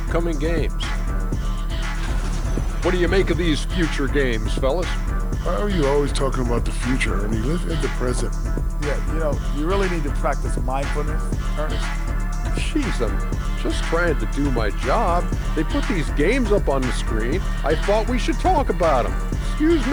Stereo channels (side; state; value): right; noise; hiss, 29 dB below the sound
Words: games. What do you make of these future games, fellas? Why are you always talking about the future, Ernie? Live in the present. Yeah, you really need to practice mindfulness, Ernest. Jeez, I'm just trying to do my job. They put these games up on the screen. I thought we should talk about them. Excuse